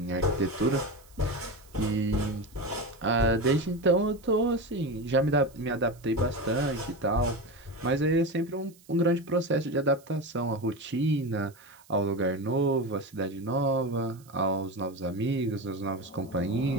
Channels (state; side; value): noise; right; hiss, 27 dB below the sound